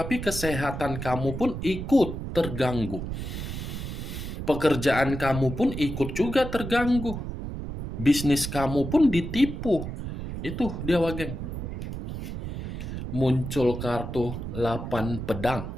kesehatan kamu pun ikut terganggu. Pekerjaan kamu pun ikut juga terganggu. Bisnis kamu pun ditipu. Itu dia, Wak Geng. Muncul kartu 8 pedang.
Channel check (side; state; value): right; noise; rumble, 6 dB below the sound